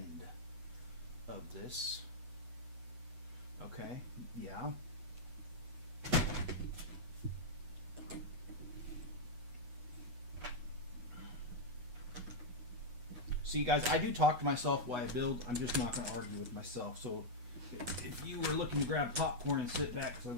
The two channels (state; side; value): late; left; 8.1 ms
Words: of this. Okay, yeah. See, guys, I do talk to myself while I build. I'm just not going to argue with myself. So if you were looking to grab popcorn and sit back, because I'm